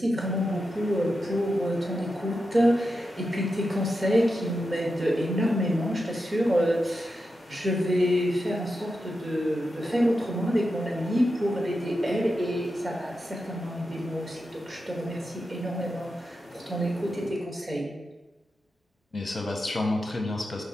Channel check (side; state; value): both; normal; correlation 0.89